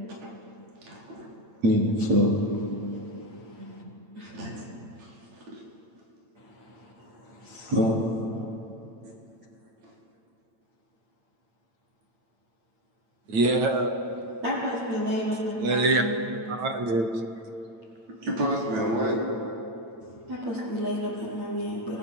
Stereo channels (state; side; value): late; left; 8.9 ms